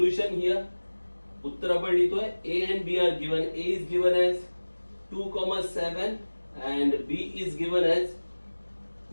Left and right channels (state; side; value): inverted; both; correlation -1.00